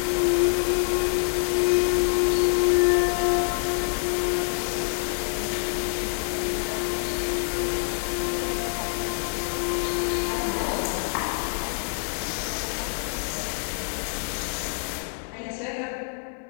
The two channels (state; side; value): silent; right; digital silence